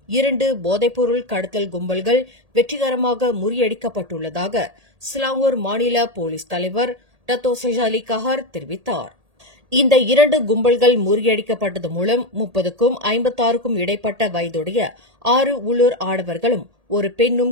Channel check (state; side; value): late; left; 1.8 ms